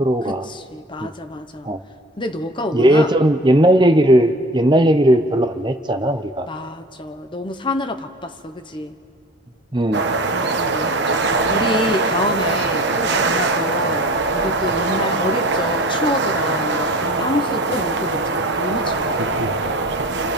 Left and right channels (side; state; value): both; normal; correlation 0.42